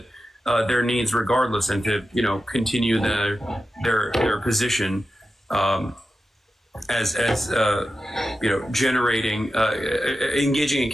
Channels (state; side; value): normal; both; correlation 0.91